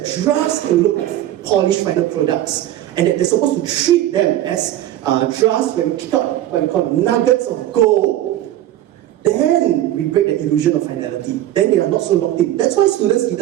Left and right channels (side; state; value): left; quieter; 13.2 dB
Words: drafts can look like polished final products, and that they're supposed to treat them as drafts when we kick out what we call nuggets of gold, then we break the illusion of finality. Then they are not so locked in. That's why students